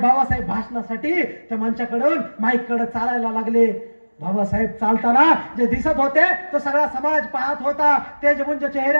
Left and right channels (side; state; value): both; inverted; correlation -1.00